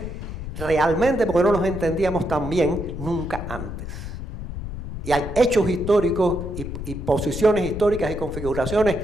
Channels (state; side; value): noise; left; rumble, 8 dB below the sound